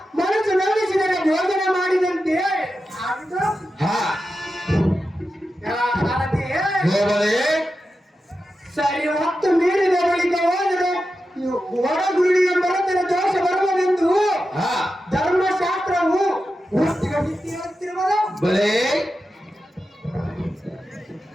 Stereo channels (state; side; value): normal; both; correlation 0.91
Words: ಮನಸ್ಸು ನಂಬಿಸಿದರೆ ಭೋಜನ ಮಾಡಿದಂತೆ ಆಗಿದೆ. ಹಾ, ಸಾರಥಿಯೇ, ಹೋಗದೆ ಸರಿ ಹೊತ್ತು ಮೀರಿದ ಬಳಿಕ ಹೋದರೆ ಹೊರಗುಳಿಯ ಮರತರ ದೋಷ ಬರುವುದೆಂದು ಹಾ, ಧರ್ಮಶಾಸ್ತ್ರವು ಹೇಳುತ್ತಿರುವುದು. ಬಲೆ